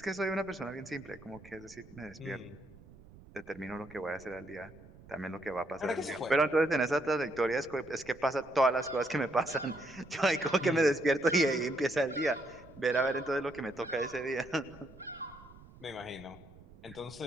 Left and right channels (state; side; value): noise; right; rumble, 21 dB below the sound